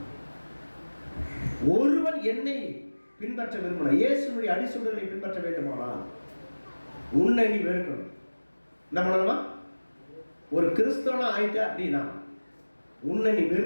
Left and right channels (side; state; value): both; inverted; correlation -1.00